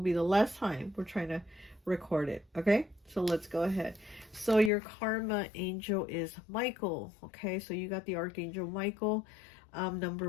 the last time we're trying to record it, okay? So let's go ahead. So your karma angel is Michael, okay? So you got the Archangel Michael.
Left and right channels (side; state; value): right; drops out; at 4.7 s